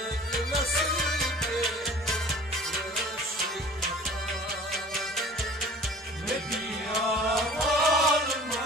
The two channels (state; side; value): normal; both; correlation 0.45